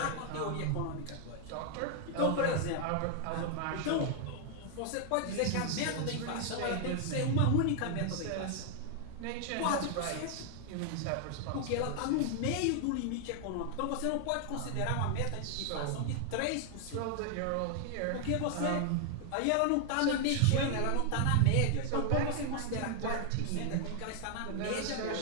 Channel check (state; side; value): different; both; correlation 0.00